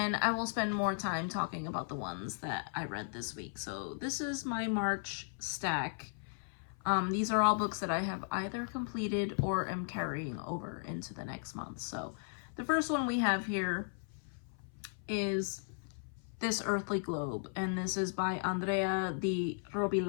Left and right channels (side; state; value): right; silent; 54 dB below the other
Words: I will spend more time talking about the ones that I read this week. So this is my March stack. These are all books that I have either completed or am carrying over into the next month. So the first one we have here is This Earthly Globe, and this is by Andrea Di